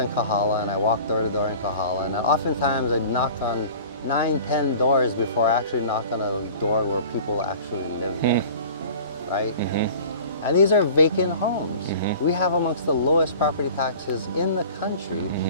Kahala, and I walk door to door in Kahala, and oftentimes I knock on 9, 10 doors before I actually knock on a door where people actually live there, right? And these are vacant homes. We have amongst the lowest property taxes in the country,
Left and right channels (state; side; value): inverted; both; correlation -0.43